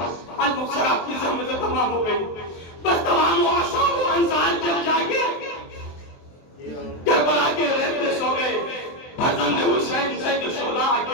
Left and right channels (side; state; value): right; late; 23 ms